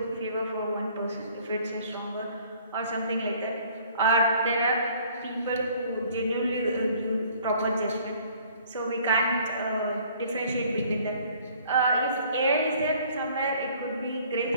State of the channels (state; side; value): inverted; both; correlation -0.56